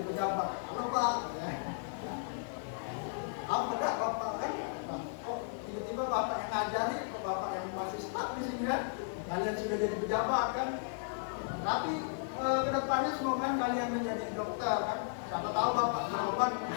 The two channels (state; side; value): silent; right; digital silence